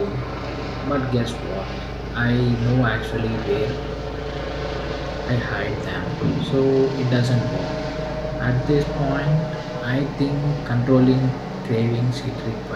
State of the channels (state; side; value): identical; both; correlation 1.00